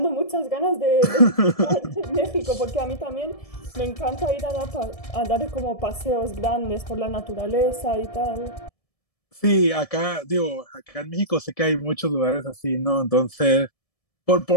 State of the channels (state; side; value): late; right; 1.7 ms